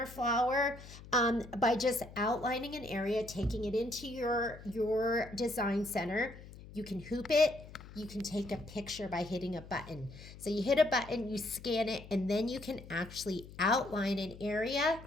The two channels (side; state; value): left; noise; hum, 16 dB below the sound